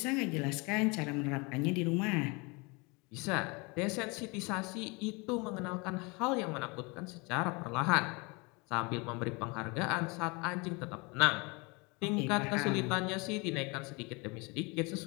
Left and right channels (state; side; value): quieter; right; 28.5 dB